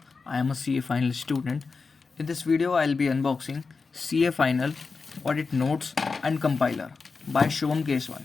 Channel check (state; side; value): quieter; right; 4.6 dB